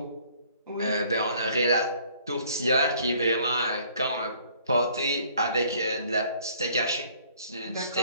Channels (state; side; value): inverted; both; correlation -0.59